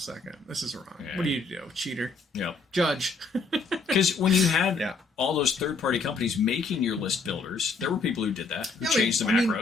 This is wrong. Yeah. What do you do? Cheater? Yeah. Judge. Because when you had all those third-party companies making your list builders, there were people who did that, who changed the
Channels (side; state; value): right; quieter; 4.1 dB